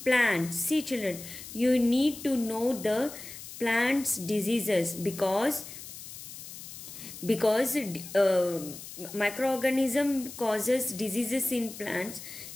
plants. See children, you need to know the plants diseases because microorganism causes diseases in plants.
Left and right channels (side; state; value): left; noise; hiss, 13 dB below the sound